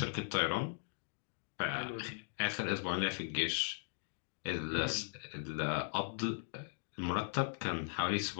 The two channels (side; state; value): right; silent; digital silence